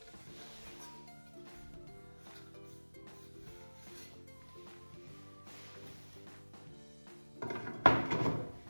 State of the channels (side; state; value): both; inverted; correlation -1.00